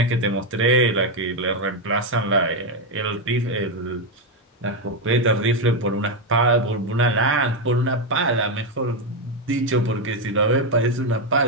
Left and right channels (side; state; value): both; normal; correlation 0.06